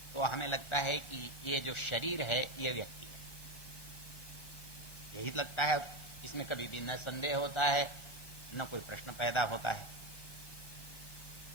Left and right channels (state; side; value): late; right; 1.2 ms